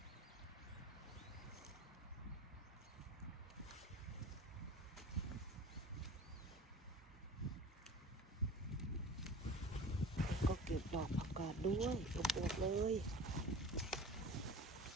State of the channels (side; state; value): both; normal; correlation 0.38